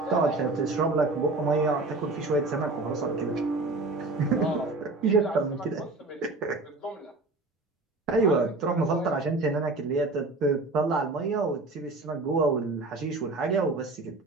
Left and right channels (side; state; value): left; quieter; 3.2 dB